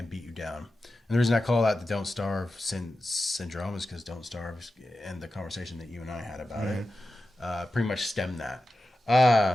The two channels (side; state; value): both; normal; correlation 0.92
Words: beat you down. And the reason I call that the Don't Starve syndrome is because Don't Starve and the conversation that you and I had about it pretty much stemmed that.